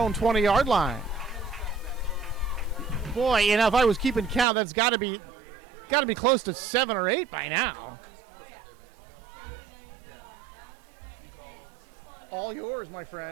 20-yard line. Boy, you know, if I was keeping count, that's got to be close to 7 or 8 by now. All yours, my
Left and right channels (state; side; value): drops out; left; at 4.5 s